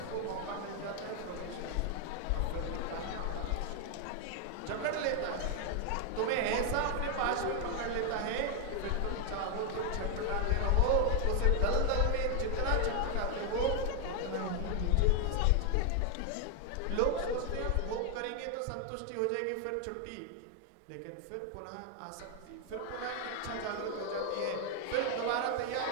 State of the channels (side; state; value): both; different; correlation 0.00